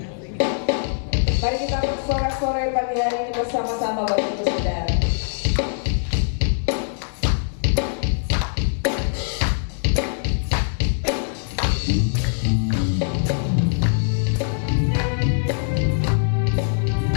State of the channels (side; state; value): right; silent; digital silence